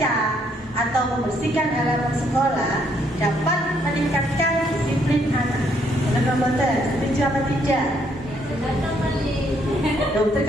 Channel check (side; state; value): both; normal; correlation 0.70